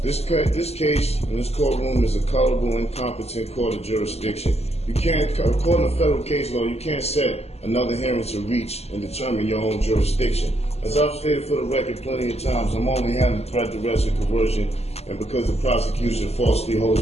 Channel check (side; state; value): right; late; 0.30 ms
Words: this case in this courtroom is a culpable, incompetent court of jurisdiction. You can't, according to federal case law, you can't set another hearing to reach and determine your own jurisdiction. As I've stated for the record plenty of times, I'm only handling threat, duress, and coercion, and because the prosecution falsely